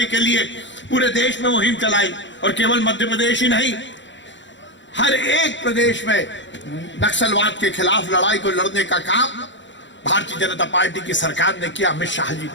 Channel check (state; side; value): late; right; 0.54 ms